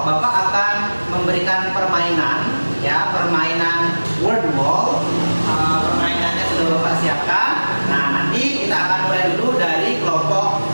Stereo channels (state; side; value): inverted; both; correlation -1.00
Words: Bapak akan memberikan permainan, ya, permainan word wall. Permainannya sudah Bapak siapkan. Nah, nanti kita akan mulai dulu dari kelompok